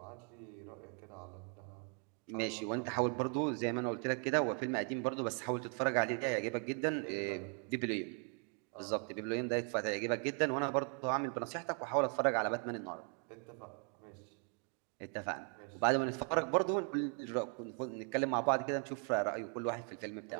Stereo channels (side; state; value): left; quieter; 38.8 dB